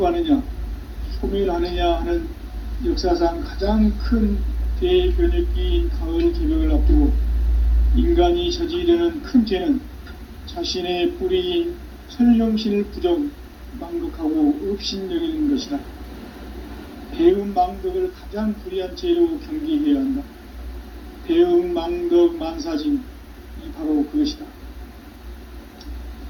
소멸하느냐 하는 역사상 가장 큰 대변혁기인 가을 개벽을 앞두고 인간이 저지르는 큰 죄는 자신의 뿌리인 설령신을 부정, 망극하고 업신여기는 것이다. 배음 망덕을 가장 불의한 죄로 경계해야 한다. 배음 망덕 만사진, 이 바로 그것이다.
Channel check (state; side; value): identical; both; correlation 1.00